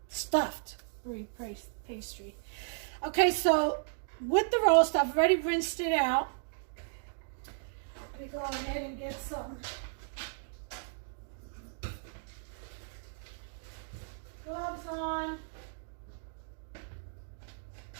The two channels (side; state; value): left; silent; digital silence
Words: stuffed brie pastry. Okay, so with the roast, I've already rinsed it out. Let me go ahead and get some gloves on.